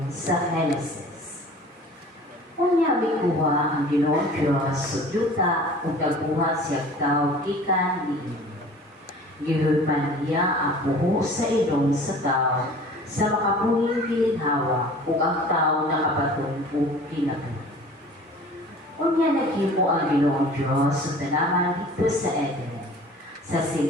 sa Genesis. Unya mikuha ang Ginoong Diyos sudyuta ug nagbuhat siya tao gikan niini. Gihudman niya ang buho sa ilong sa tao sa makabuhing gilinhawa ug ang tao nakapatong ug kinabuhi. Unya naghimo ang Ginoong Diyos sa tanaman dito sa Eden. Sa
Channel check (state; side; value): normal; both; correlation 0.45